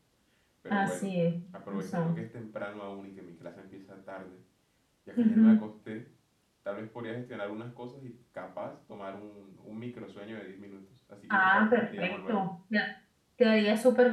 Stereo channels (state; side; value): identical; both; correlation 1.00